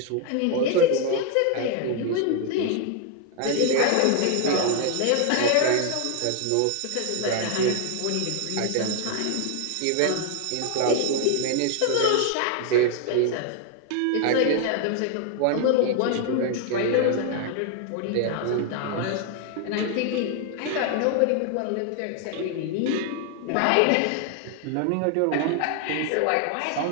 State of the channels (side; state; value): both; different; correlation 0.00